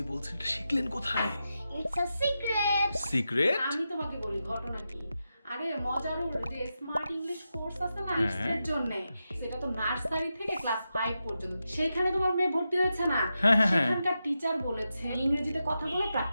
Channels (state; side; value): inverted; both; correlation -0.89